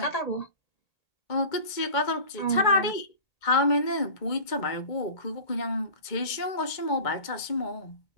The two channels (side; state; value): right; late; 2.1 ms